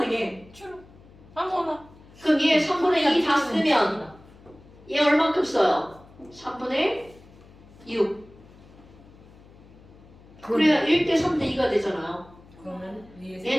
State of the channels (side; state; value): left; noise; hum, 23 dB below the sound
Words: 아무거나. 그럼 얘 3분의 2 다 쓰면 얘 얼만큼 써요? 3분의 6. 그래야 1대 3대 2가 되잖아요. 그러면 위에